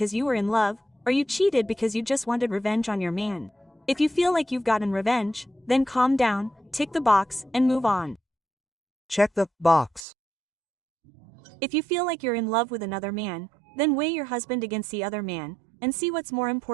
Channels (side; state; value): left; drops out; at 10.1 s